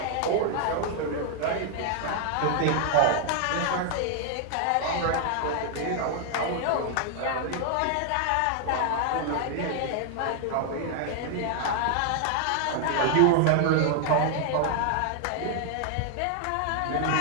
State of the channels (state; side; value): different; both; correlation 0.00